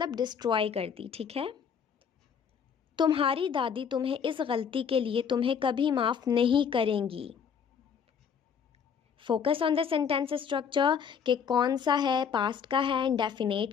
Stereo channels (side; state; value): right; quieter; 7.1 dB